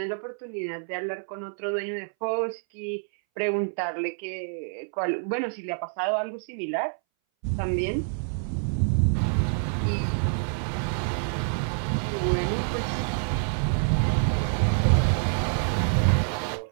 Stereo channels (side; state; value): left; silent; 60 dB below the other